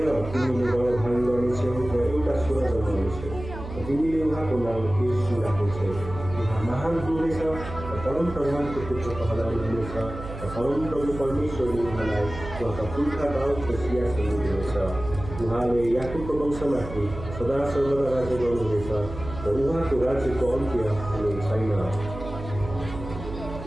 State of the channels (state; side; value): noise; right; hum, 10 dB below the sound